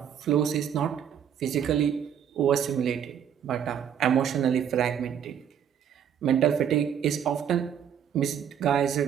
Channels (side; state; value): left; quieter; 8.7 dB